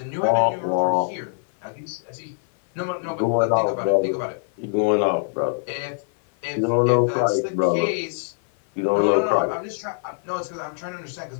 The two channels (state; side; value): silent; right; 56 dB below the other